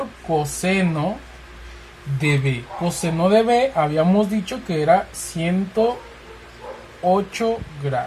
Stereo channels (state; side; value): identical; both; correlation 1.00